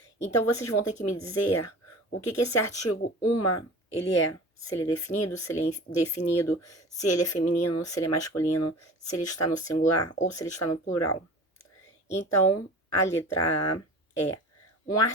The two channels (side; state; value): both; normal; correlation 0.39